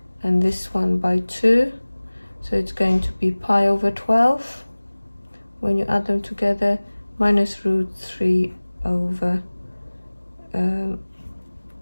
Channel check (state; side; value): inverted; both; correlation -1.00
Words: and this one by 2, so it's going to be pi over 12 when you add them together, minus √3 over